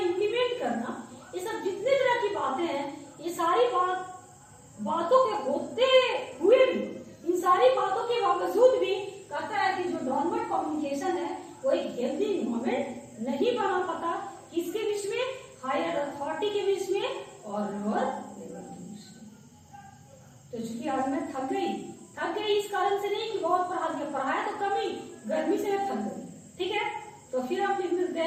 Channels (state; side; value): identical; both; correlation 1.00